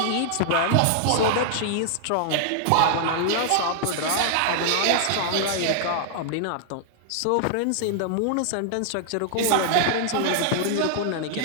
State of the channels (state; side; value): different; both; correlation 0.00